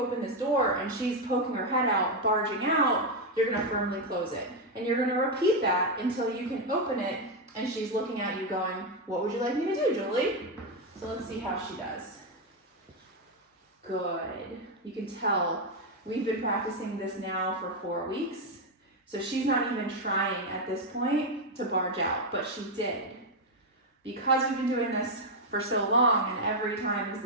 this door and she's poking her head out, barging out, you're gonna firmly close it. And you're gonna repeat that until you can open it and she's looking at you going, "What would you like me to do, Julie?" So let's see how she does. Good. You can tell we've been practicing this now for 4 weeks. So she's not even trying at this point to barge out, but she did. Because we've been doing this for so long and every time is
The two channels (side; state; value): both; normal; correlation 0.04